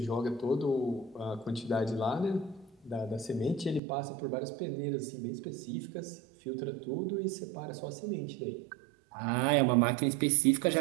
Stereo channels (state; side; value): drops out; left; at 3.8 s